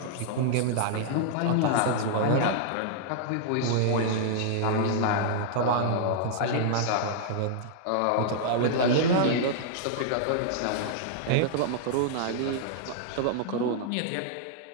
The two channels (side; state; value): both; different; correlation -0.01